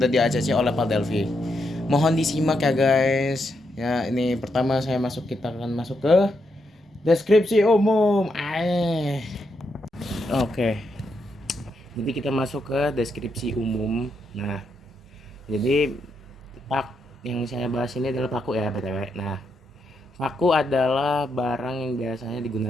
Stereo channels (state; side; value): normal; both; correlation 0.81